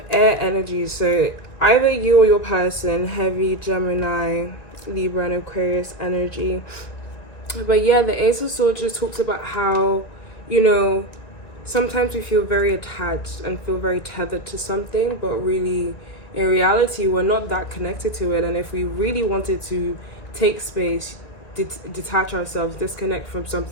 air energy, so either you or your person, heavy Gemini, Libra, and Aquarius energy. But yeah, the Ace of Swords just talks about how, you know, sometimes we feel very attached and feel very tethered to something, but really in reality we're not that connected to it. And if we really wanted to take space, detach ourselves, disconnect from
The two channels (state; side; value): late; right; 1.9 ms